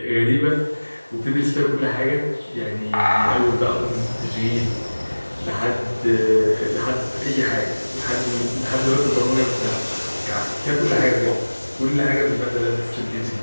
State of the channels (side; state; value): both; inverted; correlation -1.00